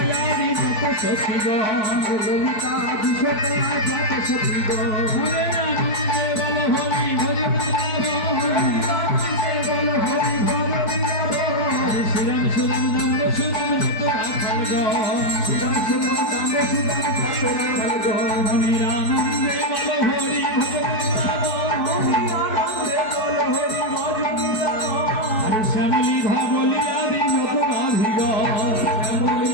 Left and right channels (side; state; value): right; late; 4.6 ms